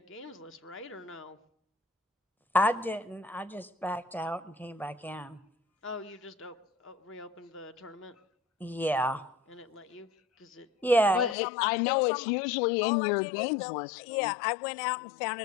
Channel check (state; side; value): drops out; right; at 11.4 s